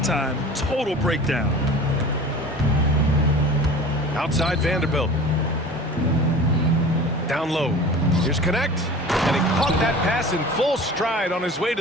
time. Total breakdown. Outside Vanderbilt. Down low. Here's Knecht. And he caught that pass in full stride on his way to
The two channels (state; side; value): normal; both; correlation 0.39